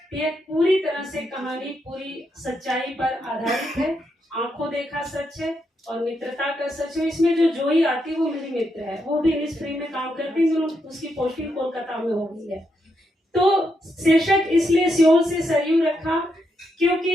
ये पूरी तरह से कहानी पूरी सच्चाई पर आधारित है, आंखों देखा सच है और मित्रता का सच है। इसमें जो जोई आती है वो मेरी मित्र है, वो भी इनिस्फ्री में काम करती है, उसकी पोस्टिंग कोलकाता में हो गई है। तो शीर्षक इसलिए सियोल से सरयू रखा,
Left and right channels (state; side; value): normal; both; correlation 0.81